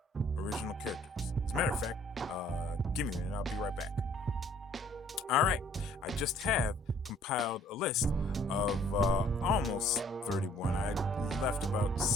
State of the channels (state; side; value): normal; both; correlation 0.59